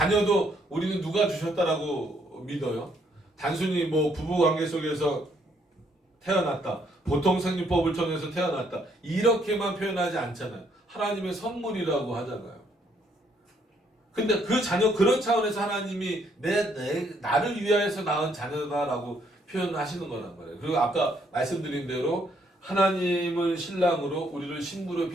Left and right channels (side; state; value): both; normal; correlation 0.70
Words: 우리는 누가 주셨다라고 믿어요? 단순히 부부관계 속에서 태어났다, 보통 생리법을 통해서 태어났다, 이렇게만 표현하지 않잖아요. 하나님의 선물이라고 하잖아요. 근데 그 자녀, 그런 차원에서 하나님이 나를 위하여서 낳은 자녀다라고 표현하시는 거란 말이에요. 그리고 아까 말씀드린 대로 하나님을 신랑으로 우리를 신부로